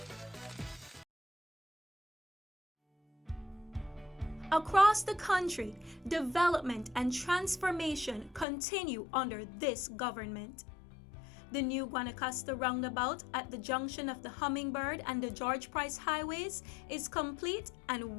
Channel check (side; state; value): right; drops out; at 8.5 s